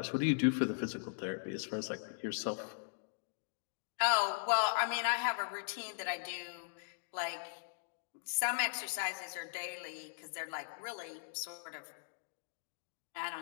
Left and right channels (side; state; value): right; silent; digital silence